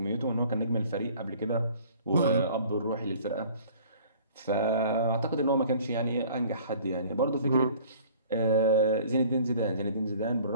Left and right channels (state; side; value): inverted; both; correlation -0.51